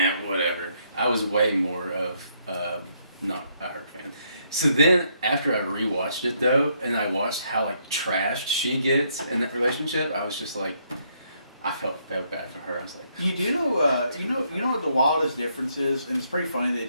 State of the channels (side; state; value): both; inverted; correlation -0.72